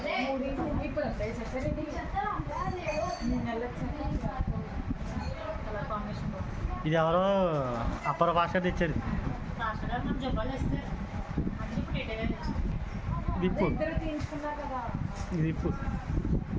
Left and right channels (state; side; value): identical; both; correlation 1.00